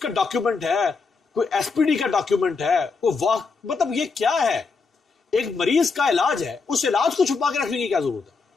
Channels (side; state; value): right; quieter; 4.6 dB